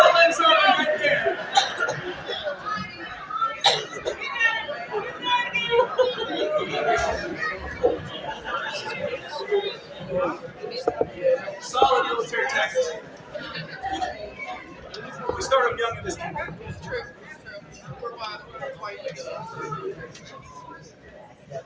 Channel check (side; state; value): both; identical; correlation 1.00